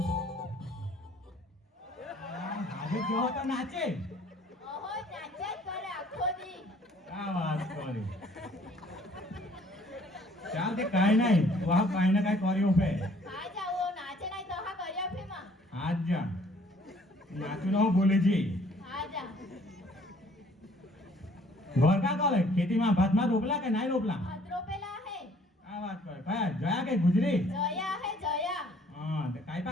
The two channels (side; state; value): both; normal; correlation 0.59